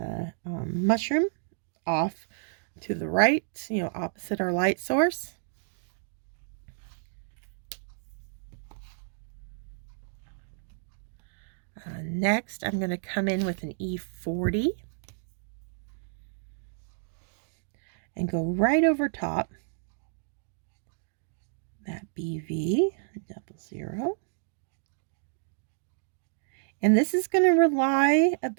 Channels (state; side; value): silent; left; digital silence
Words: mushroom off to the right, opposite our light source. Next, I'm going to come in with an E40 and go right over top that BV00. And this is going to rely a